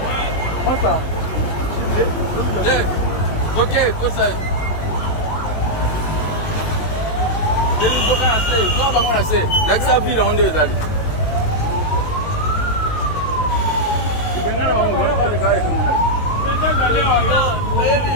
Masa. Ok, cosa. L'accès ville on est d'aller.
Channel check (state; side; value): late; right; 19 ms